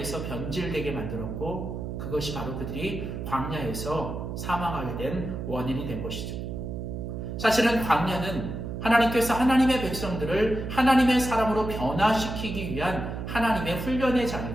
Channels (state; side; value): noise; right; hum, 5 dB below the sound